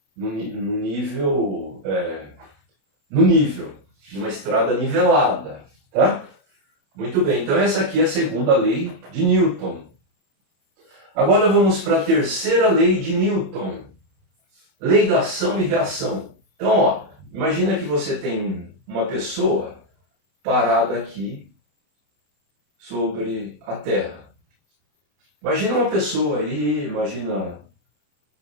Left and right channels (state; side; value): late; left; 27 ms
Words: no nível, numa estrada nivelada, tá? Muito bem, então essa aqui é a segunda lei de Newton. Agora vamos para a terceira lei de Newton. Lei da ação e reação. Então, ó, imagina que você tem uma pessoa parada aqui sobre a Terra. Imagina uma pessoa aí, imagina